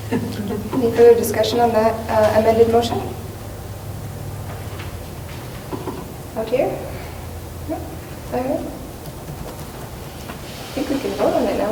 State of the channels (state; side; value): identical; both; correlation 1.00